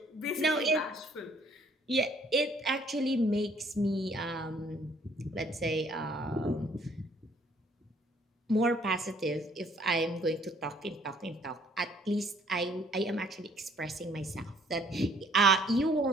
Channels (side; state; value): both; normal; correlation 0.62